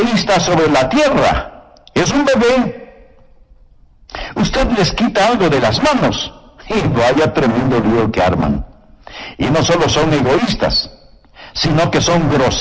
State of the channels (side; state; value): both; identical; correlation 1.00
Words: sobre la tierra es un bebé. Usted les quita algo de las manos y vaya tremendo lío que arman. Y no solo son egoístas, sino que son